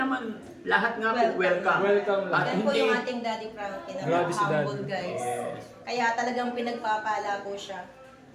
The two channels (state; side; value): identical; both; correlation 1.00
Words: lahat nga po welcome. Welcome lang. At Yan po hindi, yung ating Daddy Frankie na Grabe si humble Daddy. guys. Yes. Kaya talagang pinagpapala po siya.